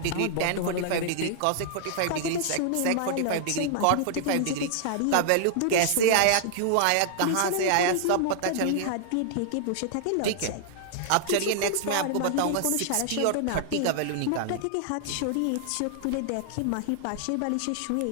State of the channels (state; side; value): different; both; correlation -0.01